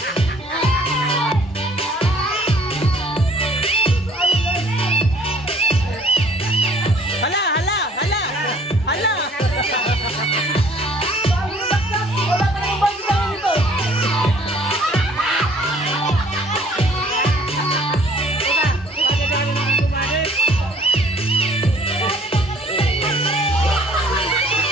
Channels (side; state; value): both; normal; correlation 0.57